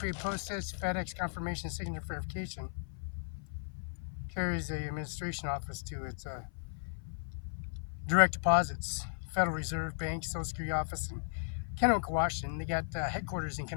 postage, FedEx confirmation signature verification carries the administration office to its direct deposits, Federal Reserve Bank, Social Security Office in Kennewick, Washington. They got headquarters in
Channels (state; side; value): silent; right; 54 dB below the other